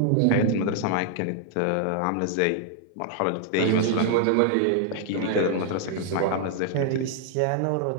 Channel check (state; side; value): different; both; correlation 0.00